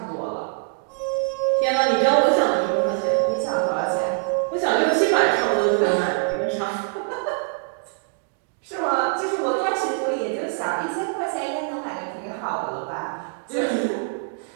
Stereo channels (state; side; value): silent; left; digital silence